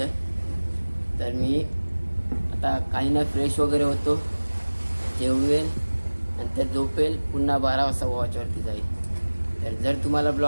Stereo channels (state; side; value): inverted; both; correlation -1.00